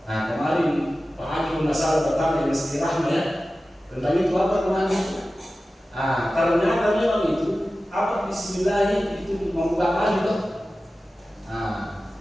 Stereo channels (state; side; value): normal; both; correlation 0.95